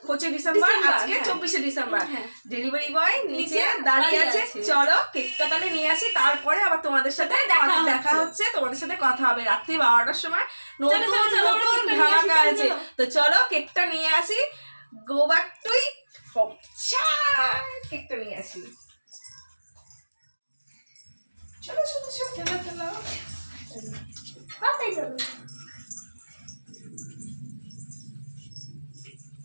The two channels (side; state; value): both; inverted; correlation -1.00